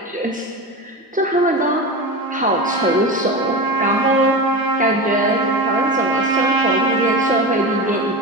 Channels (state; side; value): normal; both; correlation 0.24